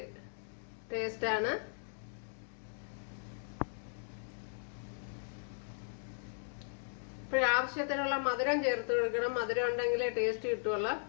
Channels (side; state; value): right; silent; digital silence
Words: ടേസ്റ്റാണ്. ഇപ്പോഴാവശ്യത്തിനുള്ള മധുരം ചേർത്ത് കൊടുക്കണം. മധുരം ഉണ്ടെങ്കിലേ ടേസ്റ്റ് കിട്ടുള്ളൂ.